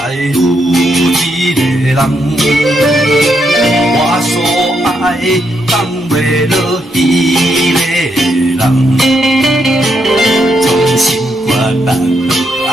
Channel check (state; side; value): normal; both; correlation 0.79